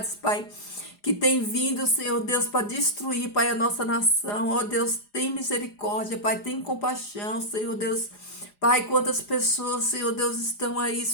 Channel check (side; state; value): right; late; 4.9 ms